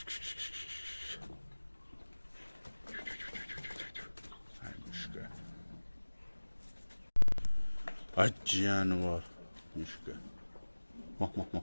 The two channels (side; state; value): both; inverted; correlation -1.00